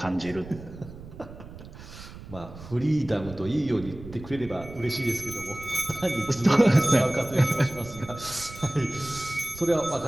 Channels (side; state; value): right; noise; rumble, 15 dB below the sound